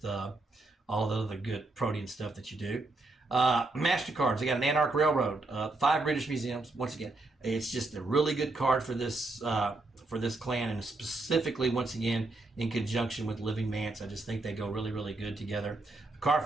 all the other good protein stuff that you do. MasterCards. I got an Anarch Railroad, 5 British museums. Once again, it's just a really good card for this clan, and specifically, once again, in conjunction with Living Mance. I just think they go really, really good together.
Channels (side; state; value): left; quieter; 3.0 dB